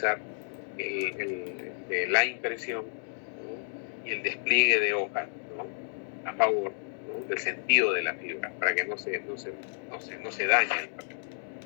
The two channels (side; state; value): right; silent; digital silence